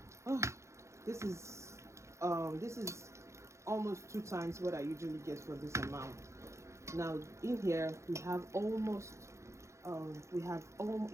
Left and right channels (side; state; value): left; late; 0.14 ms